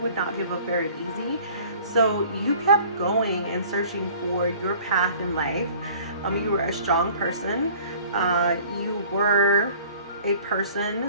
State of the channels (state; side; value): inverted; both; correlation -0.50